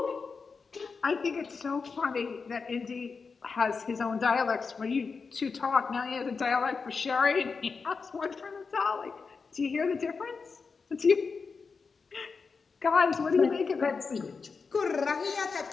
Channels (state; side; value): quieter; right; 4.9 dB